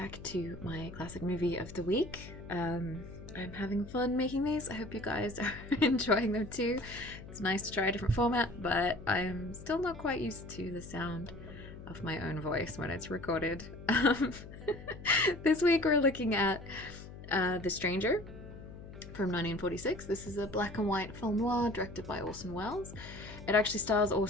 to my classic movie of the week. I'm having fun making these. I hope you guys are enjoying them too. It's nice to try a different format, but I'm still not quite used to the sound of my own voice when it's recorded. This week we're looking at The Stranger from 1946. This is a black and white film noir directed by Orson Welles. It actually stars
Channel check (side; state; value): left; noise; hum, 14 dB below the sound